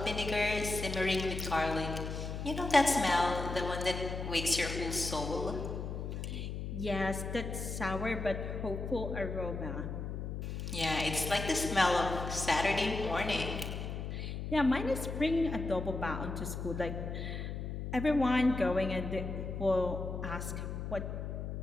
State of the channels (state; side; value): noise; left; hum, 5 dB below the sound